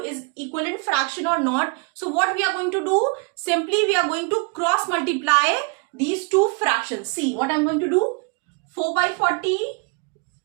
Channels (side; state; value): left; quieter; 35.3 dB